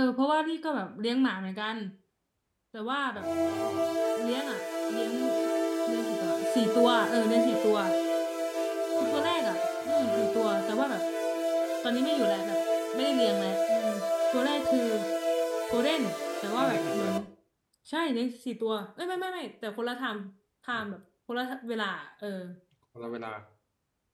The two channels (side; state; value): both; identical; correlation 1.00